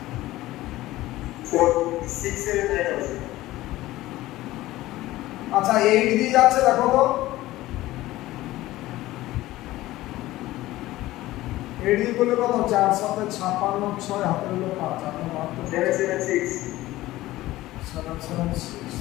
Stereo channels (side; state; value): right; quieter; 16.8 dB